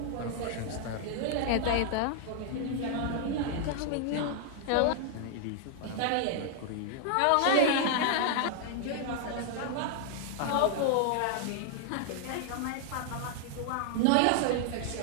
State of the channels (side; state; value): both; different; correlation 0.00